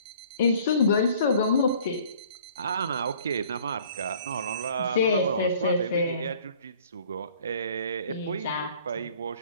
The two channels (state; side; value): inverted; both; correlation -0.54